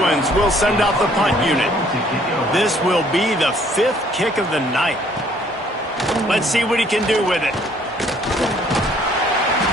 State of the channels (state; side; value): normal; both; correlation 0.61